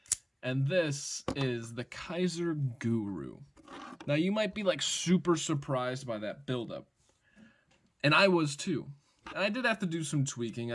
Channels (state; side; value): identical; both; correlation 1.00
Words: And this is the Kizer Guru. Now, you might be like super surprised by that buildup, and I was too. I did have to do some tweaking.